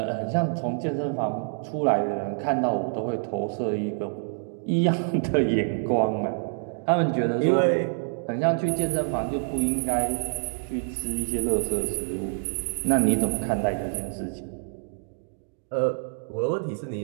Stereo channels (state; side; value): silent; left; digital silence